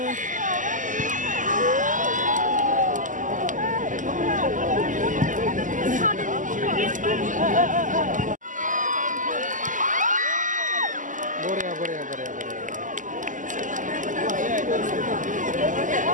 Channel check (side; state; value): left; late; 0.37 ms